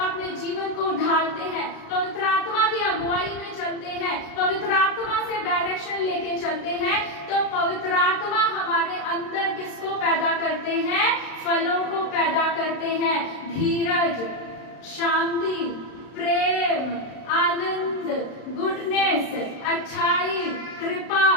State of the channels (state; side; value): late; right; 35 ms